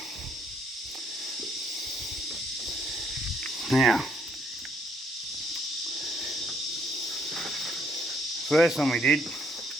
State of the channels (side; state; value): both; normal; correlation 0.68